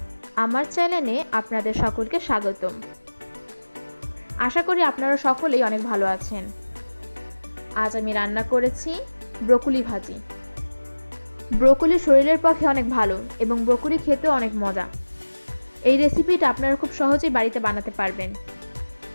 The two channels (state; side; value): inverted; both; correlation -1.00